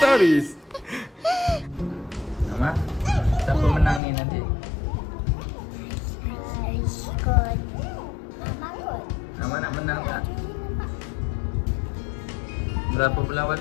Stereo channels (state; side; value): drops out; right; at 4.0 s